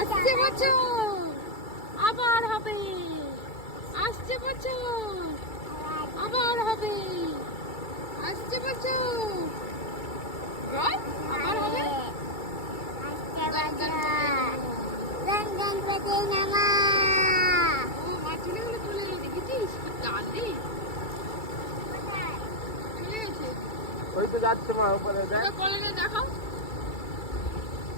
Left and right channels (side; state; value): right; late; 2.3 ms